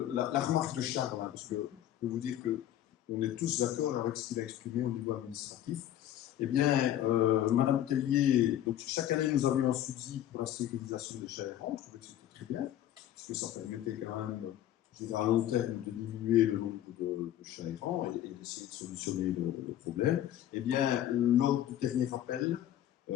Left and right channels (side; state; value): right; quieter; 11.9 dB